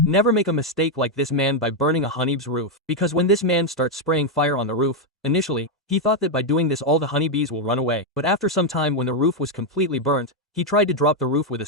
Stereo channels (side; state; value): both; normal; correlation 0.02